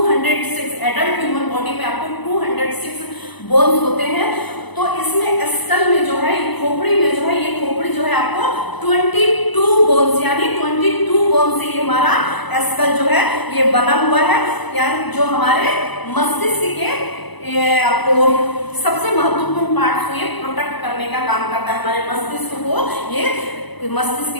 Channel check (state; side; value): late; right; 1.0 ms